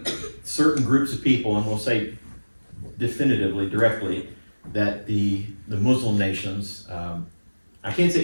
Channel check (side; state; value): both; inverted; correlation -1.00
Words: certain groups of people, and we'll say definitively, directly, that the Muslim nations, I can't